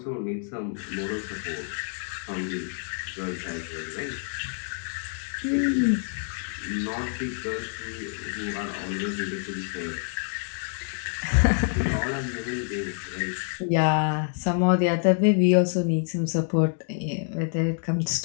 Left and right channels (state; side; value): silent; right; 58 dB below the other